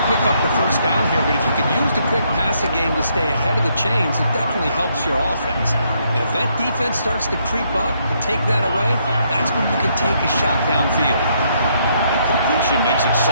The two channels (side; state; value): both; inverted; correlation -0.73